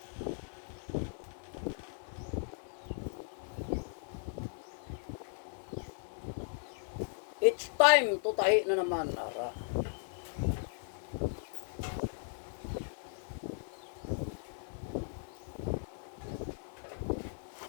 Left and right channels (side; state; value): right; silent; 53 dB below the other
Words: Each time tutahi na naman, Lara.